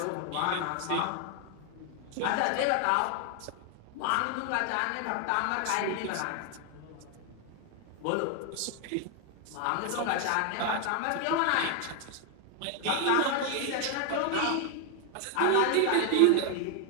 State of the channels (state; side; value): different; both; correlation 0.00